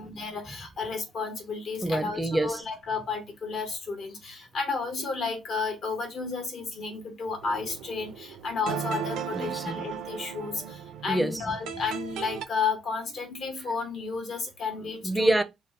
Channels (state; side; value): normal; both; correlation 0.71